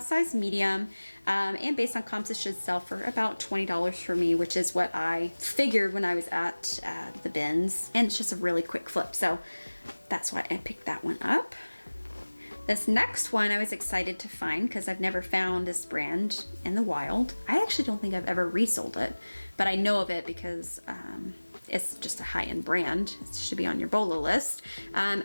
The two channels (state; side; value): inverted; both; correlation -1.00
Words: medium, and based on comps, it should sell for about $20 for me, which is what I figured when I was at the bins. And it's just a really quick flip, so that's why I picked that one up. This next one I was excited to find because I've never found this brand in the wild. I actually don't think I've ever resold it, but I know of it because it's just a high-end brand. It should be on your bolo list.